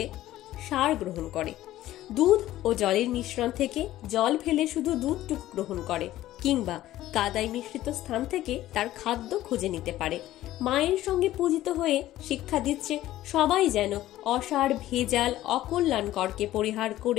সার গ্রহণ করে, দুধ ও জলের মিশ্রণ থেকে জল ফেলে শুধু দুধটুকু গ্রহণ করে, কিংবা কাদায় মিশ্রিত স্থান থেকে তার খাদ্য খুঁজে নিতে পারে। মায়ের সঙ্গে পূজিত হয়ে শিক্ষা দিচ্ছে সবাই যেন অসার, ভেজাল, অকল্যাণকরকে পরিহার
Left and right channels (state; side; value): quieter; right; 14.6 dB